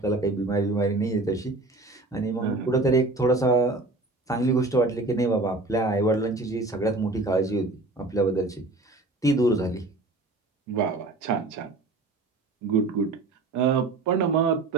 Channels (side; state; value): left; quieter; 3.1 dB